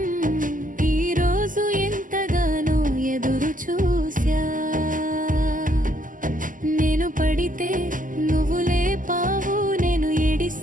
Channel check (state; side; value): late; left; 0.38 ms